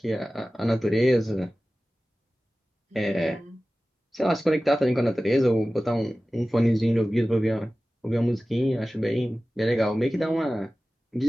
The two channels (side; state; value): both; normal; correlation 0.96